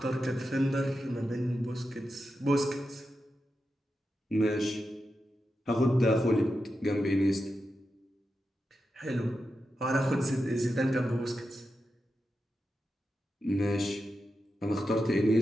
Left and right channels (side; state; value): both; normal; correlation 0.89